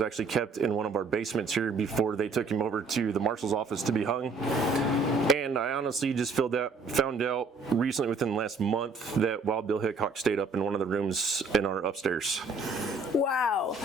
kept in one of our basements here before they took him over to the marshal's office to be hung. And I honestly just found out recently within the last month that Wild Bill Hickok stayed up in one of the rooms in our upstairs. Wow,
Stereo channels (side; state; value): left; quieter; 3.8 dB